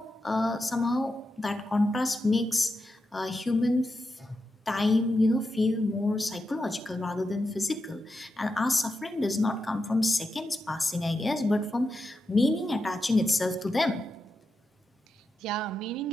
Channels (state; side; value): normal; both; correlation 0.88